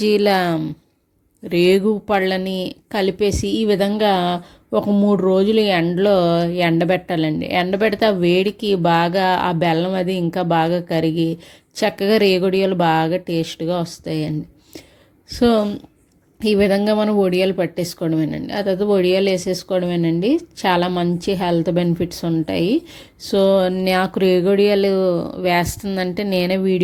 రేగు పళ్ళని కలిపేసి ఈ విధంగా ఒక 3 రోజులు ఎండలో ఎండబెట్టాలండి. ఎండబెడితే ఆ వేడికి బాగా ఆ బెల్లం అది ఇంకా బాగా కరిగి చక్కగా రేగొడియాలు బాగా టేస్ట్గా వస్తాయండి. సో ఈ విధంగా మనం వడియాలు పట్టేసుకోవడమేనండి. ఆ తర్వాత వడియాలు వేసేసుకోవడమేనండి. చాలా మంచి హెల్త్ బెనిఫిట్స్ ఉంటాయి. సో నాకు రేగొడియాలు వేస్తుందంటే నేనే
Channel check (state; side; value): identical; both; correlation 1.00